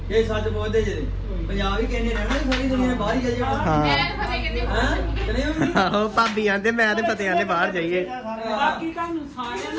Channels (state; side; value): identical; both; correlation 1.00